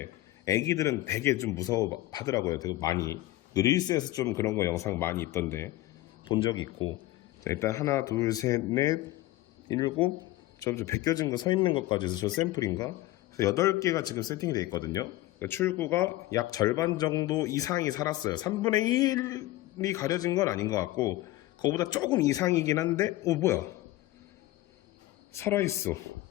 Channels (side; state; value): right; quieter; 16.9 dB